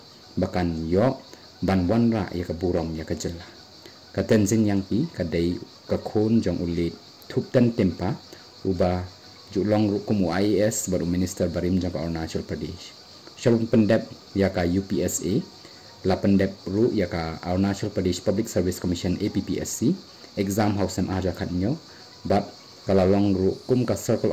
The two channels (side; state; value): both; identical; correlation 1.00